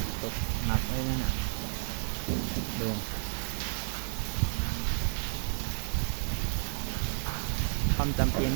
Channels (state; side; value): silent; left; 57 dB below the other